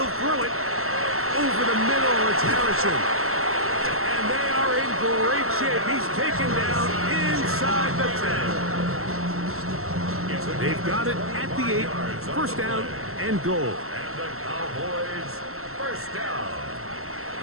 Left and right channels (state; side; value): late; left; 0.63 ms